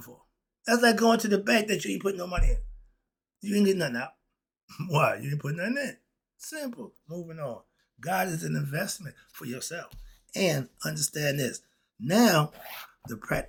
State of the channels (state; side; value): identical; both; correlation 1.00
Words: for? That's like going to the bank that you ain't putting no money in. You ain't getting nothing out. Why? You ain't putting nothing in. Simple. Moving on. God is an investment for yourself. And understand this. Now, the